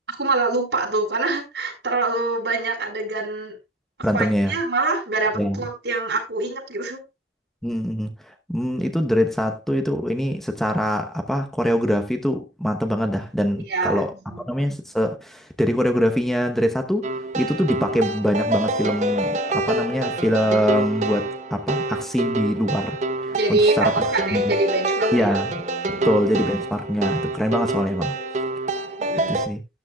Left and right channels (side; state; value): both; normal; correlation 0.53